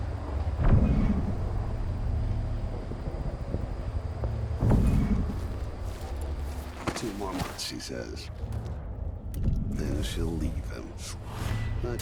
She says. Then she'll leave him. I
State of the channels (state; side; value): identical; both; correlation 1.00